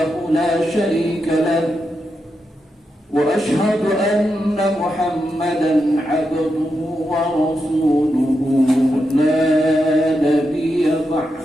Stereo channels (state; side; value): normal; both; correlation 0.86